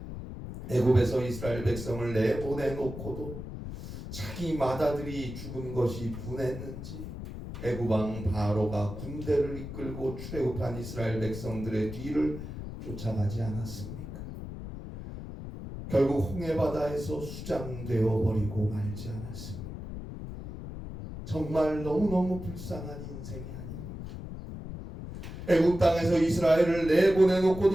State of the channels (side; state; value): left; noise; rumble, 9 dB below the sound